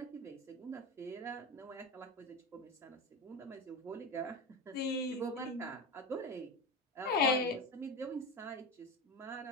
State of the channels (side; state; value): both; normal; correlation 0.22